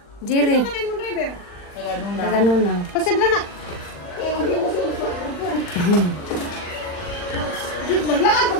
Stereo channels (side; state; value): right; late; 40 ms